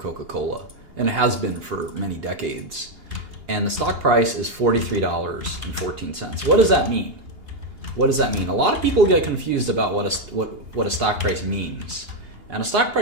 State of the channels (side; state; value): left; late; 2.8 ms